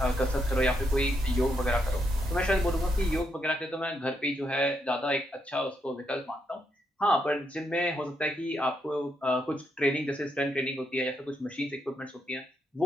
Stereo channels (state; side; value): normal; both; correlation 0.79